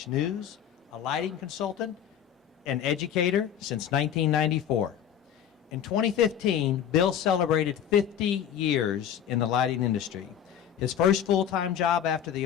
News. A lighting consultant and educator since 1994. In 2015, Bill celebrated 50 years in the lighting industry. His first full-time job after the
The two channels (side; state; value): right; quieter; 9.4 dB